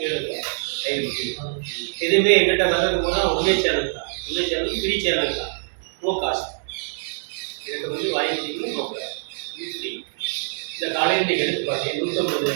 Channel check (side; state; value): left; silent; digital silence